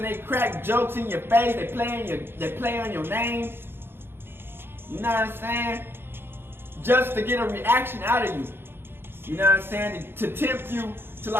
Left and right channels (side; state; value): left; late; 0.11 ms